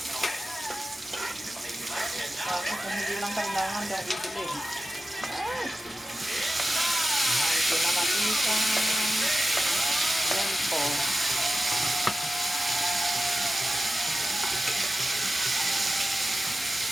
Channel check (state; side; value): normal; both; correlation 0.93